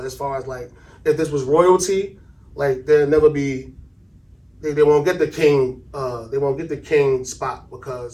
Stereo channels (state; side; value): identical; both; correlation 1.00